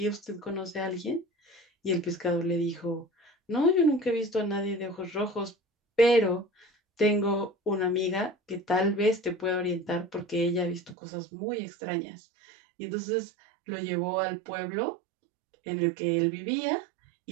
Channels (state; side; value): drops out; left; at 11.0 s